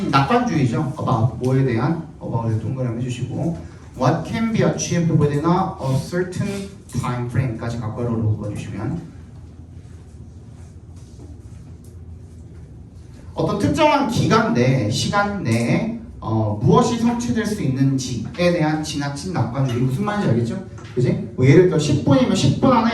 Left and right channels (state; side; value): identical; both; correlation 1.00